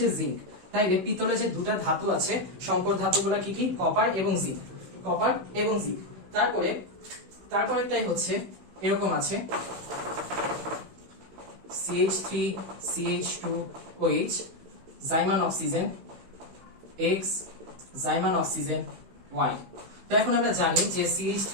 জিঙ্ক। তাই পিতলে যে দুটা ধাতু আছে সংকর ধাতুগুলো কি কি? কপার এবং জিঙ্ক, কপার এবং জিঙ্ক। তারপরেরটাই হচ্ছে এরকম আছে CH3 CH2OH, জাইমান অক্সিজেন X, জাইমান অক্সিজেন Y। তো এখন আমরা জানি যে CH3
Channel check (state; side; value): late; left; 16 ms